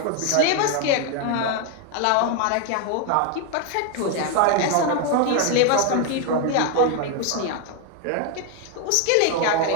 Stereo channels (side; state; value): both; different; correlation 0.01